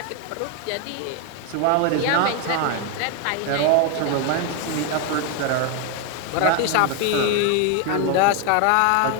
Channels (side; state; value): both; different; correlation 0.01